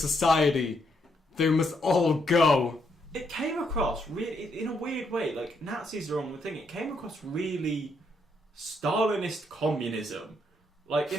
They must all go." It came across really, in a weird way, like Nazis are on the thing. It came across really Stalinist communism. Like,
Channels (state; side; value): normal; both; correlation 0.76